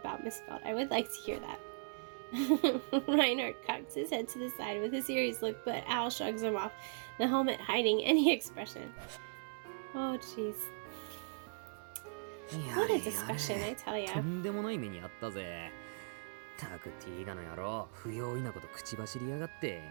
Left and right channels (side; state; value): left; silent; digital silence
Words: Miss Felt? I would like to hear that. Reinhardt cocks his head to the side with a serious look, but Al shrugs him off, the helmet hiding any expression. Oh, jeez. や What a れ discussion, や I れ tell と ya. んでもない目にあったぜ。たくティーガの野郎、不用意なこと口走りやがって。